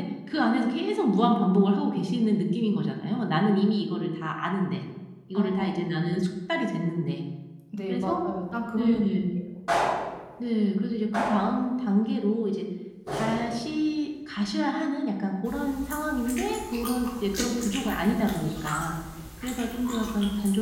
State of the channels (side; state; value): both; identical; correlation 1.00